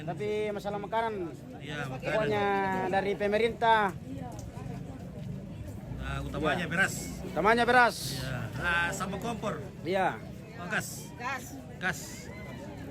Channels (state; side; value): identical; both; correlation 1.00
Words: Tapi masalah makanan Iya, makanan. pokoknya dari pemerintah. Nah, utamanya beras. Utamanya beras. Ya. Sama kompor. Iya. Oh, gas. Gas.